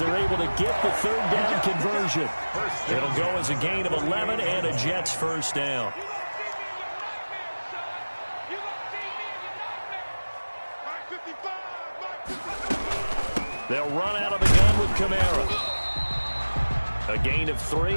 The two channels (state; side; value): inverted; both; correlation -1.00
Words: able to get the 3rd down conversion. It'll go as a gain of 11 and a Jets first down. They'll run out of the gun with Kamara. A gain of 3,